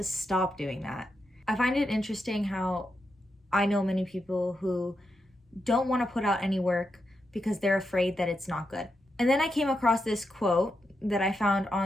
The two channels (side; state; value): both; normal; correlation 0.85